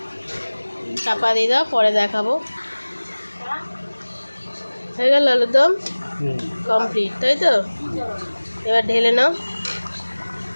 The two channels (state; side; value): inverted; both; correlation -1.00